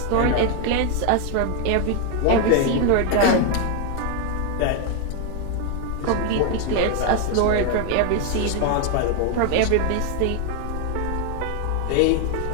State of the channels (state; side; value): different; both; correlation 0.01